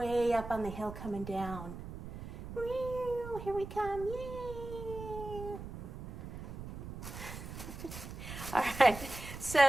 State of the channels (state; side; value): noise; right; rumble, 10 dB below the sound